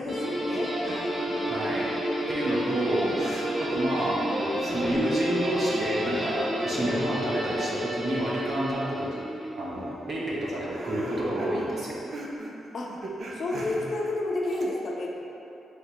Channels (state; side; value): normal; both; correlation 0.84